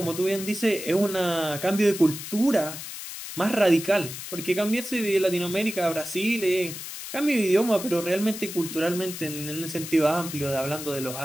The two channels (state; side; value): noise; left; hiss, 9 dB below the sound